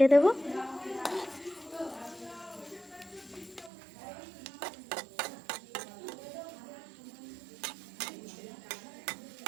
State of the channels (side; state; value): left; drops out; at 3.7 s